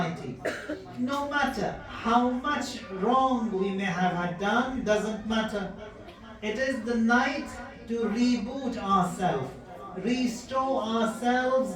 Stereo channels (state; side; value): identical; both; correlation 1.00